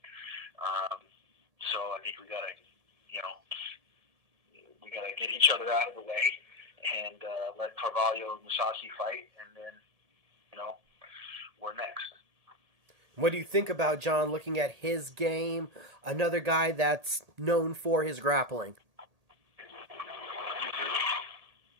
So I think we got to get each other out of the way and let Carvalho and Musashi fight, and then, we're next. What do you think about John looking at his game, another guy that's known for his grappling?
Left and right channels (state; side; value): late; left; 1.8 ms